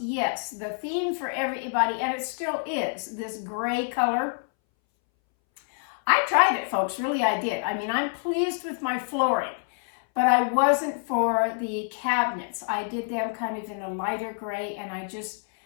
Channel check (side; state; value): right; silent; 60 dB below the other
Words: yes, the theme for everybody, and it still is, this gray color. I tried it, folks, really I did. I mean, I'm pleased with my flooring, but I wasn't for the cabinets. I did them kind of in a lighter gray, and I just,